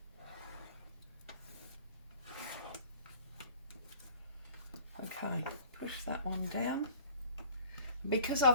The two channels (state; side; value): inverted; both; correlation -0.50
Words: Okay, push that one down. Because